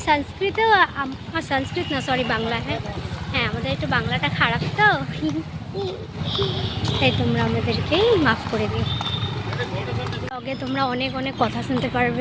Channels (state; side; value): identical; both; correlation 1.00